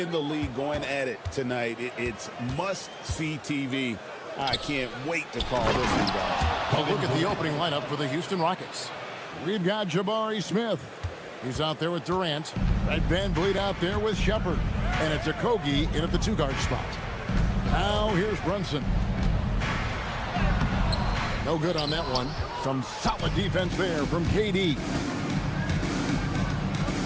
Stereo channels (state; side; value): identical; both; correlation 1.00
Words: the league going at it tonight, it's must-see TV. I can't wait to call this one, guys. A look at the opening lineup for the Houston Rockets. We've got Jabari Smith. He's out there with Durant. Fred VanVleet out there with Shepard. And it's Okogie in at the two-guard spot. Now here's Brunson. No good on that one. Some solid defense there from KD.